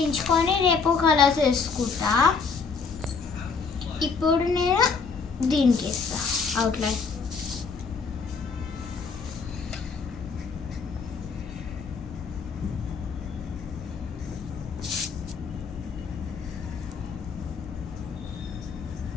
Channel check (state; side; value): quieter; right; 5.2 dB